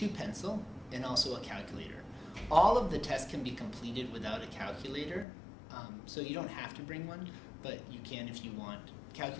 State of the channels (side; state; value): right; drops out; at 5.2 s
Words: pencil and also a calculator. All of the tests can be completed without a calculator, so you don't have to bring one, but you can if you want.